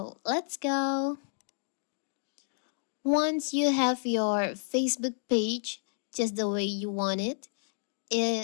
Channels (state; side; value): silent; right; digital silence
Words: let's go. Once you have your Facebook page just the way you want it,